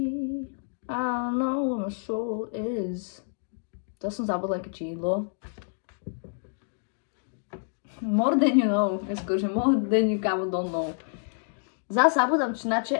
I don't know where my soul is. To som zabudla aké čídlo. More than you know. Skôrže more than you kámo don't know. Zase zabudám činače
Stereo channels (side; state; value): right; silent; digital silence